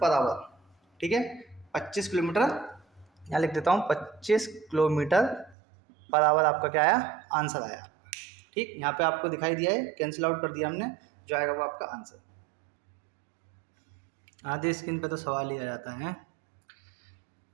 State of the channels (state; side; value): drops out; left; at 5.6 s